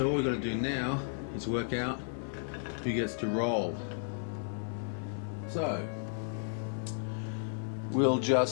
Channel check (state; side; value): silent; right; digital silence